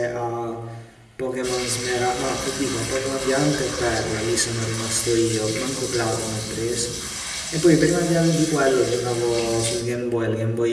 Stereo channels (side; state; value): both; identical; correlation 1.00